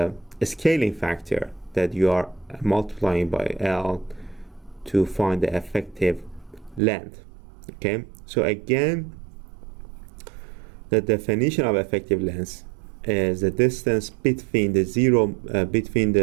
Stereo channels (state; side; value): drops out; left; at 6.8 s